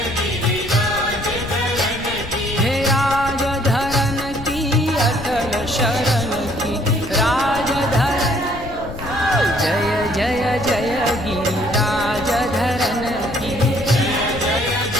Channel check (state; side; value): noise; left; rumble, 12 dB below the sound